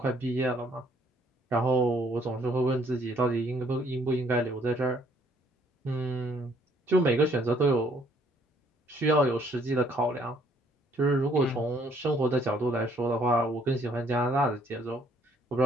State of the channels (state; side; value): normal; both; correlation 0.64